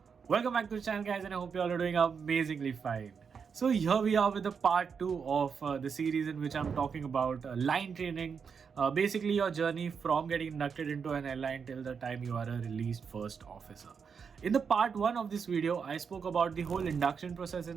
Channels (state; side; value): quieter; left; 6.2 dB